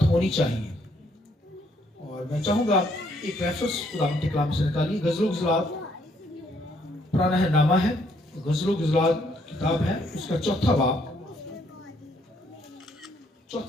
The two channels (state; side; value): normal; both; correlation 0.69